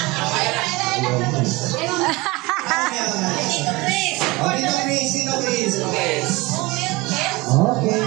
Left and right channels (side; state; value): left; quieter; 22.9 dB